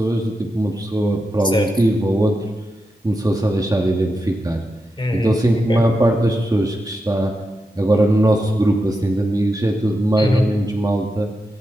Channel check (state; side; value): normal; both; correlation 0.88